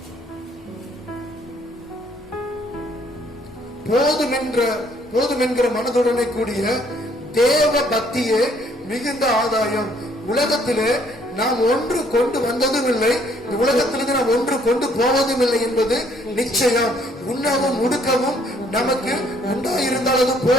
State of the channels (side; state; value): both; normal; correlation 0.64